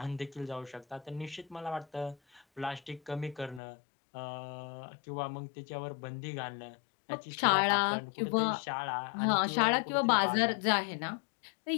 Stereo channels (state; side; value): drops out; right; at 3.6 s